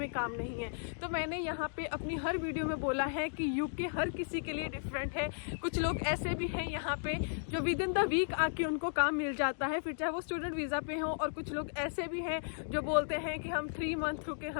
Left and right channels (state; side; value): silent; right; digital silence